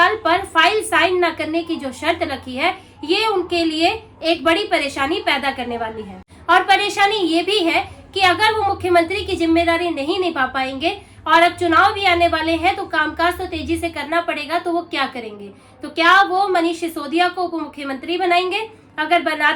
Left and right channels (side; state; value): both; identical; correlation 1.00